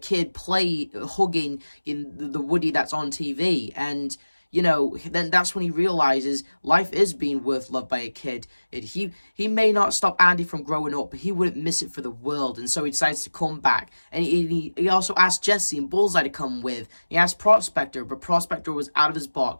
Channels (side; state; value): both; inverted; correlation -1.00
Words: hugging in the Woody that's on TV, and, you know, then that's when he realizes life is being worth loved by a kid. He may not stop Andy from growing up, but he wouldn't miss it for the world, and so he decides to come back. And he also asked Jessie and Bullseye to come with. He asked Prospector, but Prospector was out of his